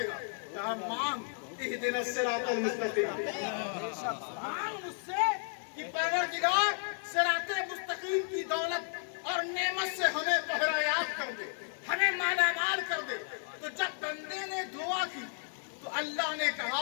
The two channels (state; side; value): silent; right; 56 dB below the other